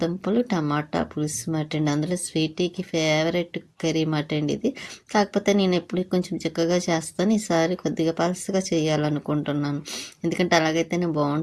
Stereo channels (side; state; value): both; identical; correlation 1.00